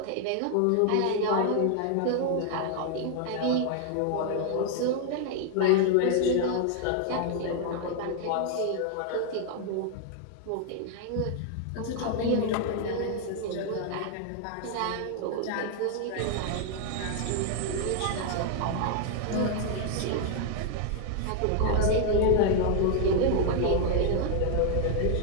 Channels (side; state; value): both; different; correlation 0.00